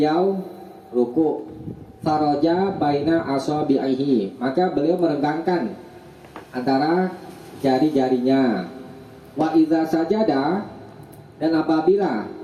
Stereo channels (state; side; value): identical; both; correlation 1.00